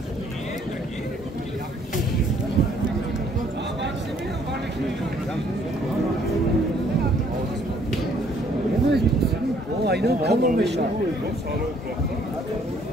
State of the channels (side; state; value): both; normal; correlation 0.63